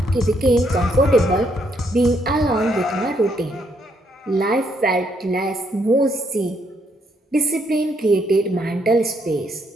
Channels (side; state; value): both; normal; correlation 0.73